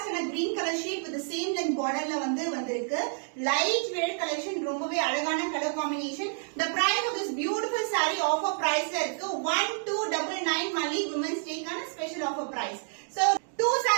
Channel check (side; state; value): left; silent; 59 dB below the other